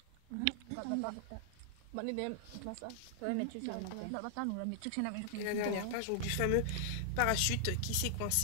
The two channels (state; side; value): different; both; correlation -0.01